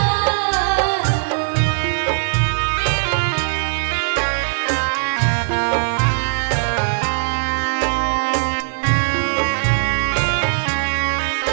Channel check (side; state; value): left; silent; digital silence